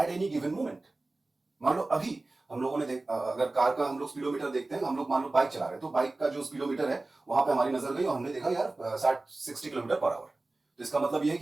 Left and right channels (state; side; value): quieter; left; 3.1 dB